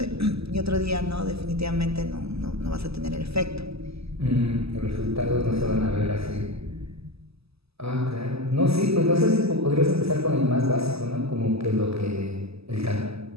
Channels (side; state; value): left; late; 0.78 ms